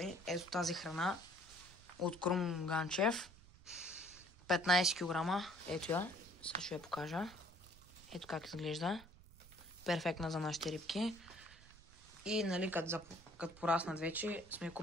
ето тази храна от Крум Ганчев. 15 кг. Ето я. Сега ще я покажа. Ето как изглежда. Перфектна за нашите рибки. И, нали, като пораснат вече, сме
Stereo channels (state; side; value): noise; right; rumble, 21 dB below the sound